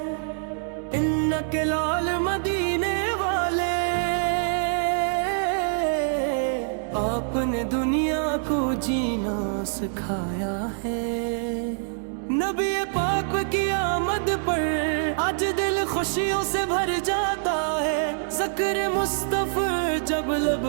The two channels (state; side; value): silent; left; digital silence